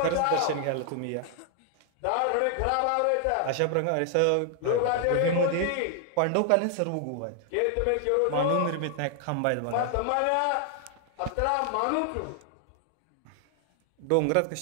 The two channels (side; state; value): both; different; correlation 0.00